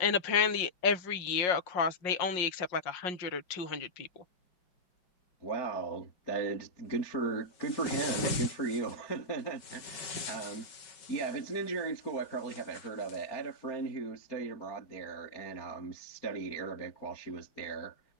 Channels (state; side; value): late; right; 5.3 ms